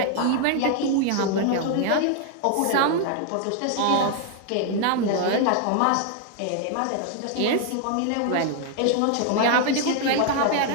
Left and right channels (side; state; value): both; different; correlation 0.00